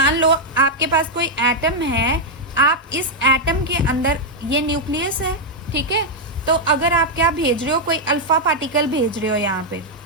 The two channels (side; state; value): both; normal; correlation -0.02